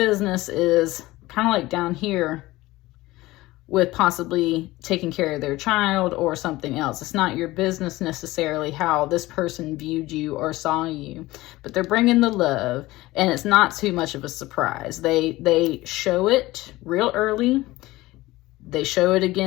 is kind of like down here with possibly taking care of their child or something else. It's not your business necessarily how this person viewed you or saw you, but they're bringing the love, and it's not too much of a surprise. They show it real early. They show it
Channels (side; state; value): right; quieter; 18.7 dB